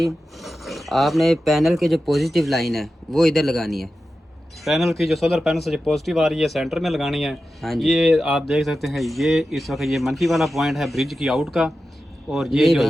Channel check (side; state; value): both; normal; correlation 0.92